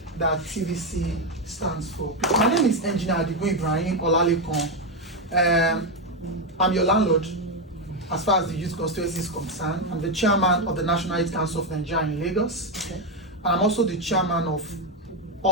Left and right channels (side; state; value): both; normal; correlation 0.06